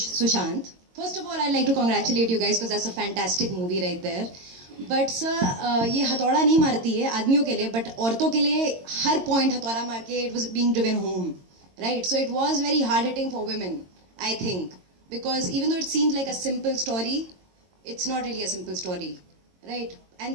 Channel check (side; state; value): left; late; 22 ms